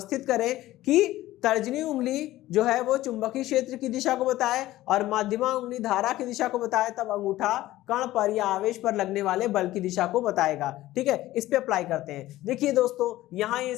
करें कि तर्जनी उंगली जो है वो चुंबकीय क्षेत्र की दिशा को बताए और मध्यमा उंगली धारा की दिशा को बताए, तब अंगूठा कण पर या आवेश पर लगने वाले बल की दिशा को बताएगा। ठीक है, इस पे अप्लाई करते हैं। देखिए दोस्तों, यहाँ ये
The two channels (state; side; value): quieter; right; 15.9 dB